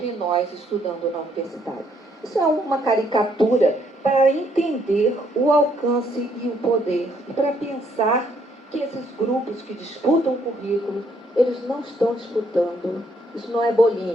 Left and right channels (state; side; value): normal; both; correlation 0.70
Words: nós estudando na universidade. Isso é uma caricatura para entender o alcance e o poder, e para pensar que esses grupos que disputam o currículo, eles não estão disputando. Isso não é